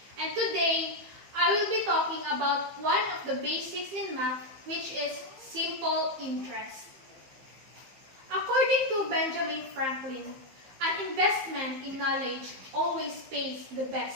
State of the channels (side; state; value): left; late; 15 ms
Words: And today, I will be talking about one of the basics in math, which is simple interest. According to Benjamin Franklin, an investment in knowledge always pays the